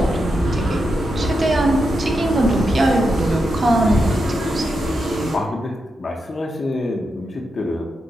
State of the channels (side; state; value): both; normal; correlation 0.86